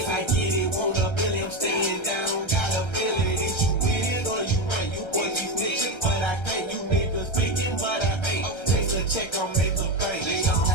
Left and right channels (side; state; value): right; late; 1.3 ms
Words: I get it, want a billion, I'm staying down. Got a feeling, is you with it or you ain't? You boys be snitching, but I can't. You niggas speaking, but I ain't. Take a check, I'll make a bank. They don't